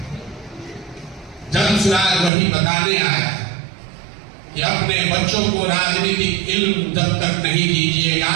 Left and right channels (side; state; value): left; drops out; at 2.3 s